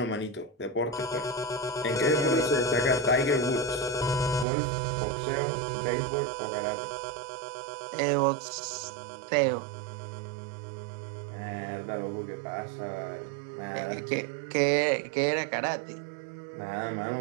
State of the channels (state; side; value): drops out; left; at 4.5 s